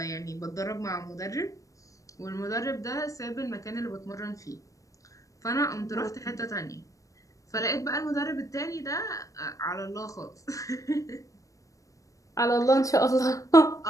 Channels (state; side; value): late; right; 0.16 ms